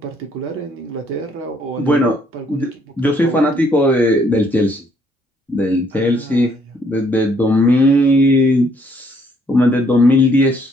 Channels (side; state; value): both; normal; correlation 0.67